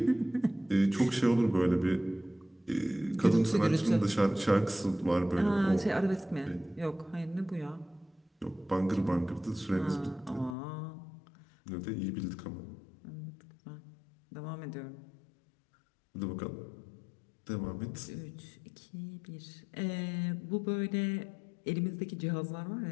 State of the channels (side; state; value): right; drops out; at 10.6 s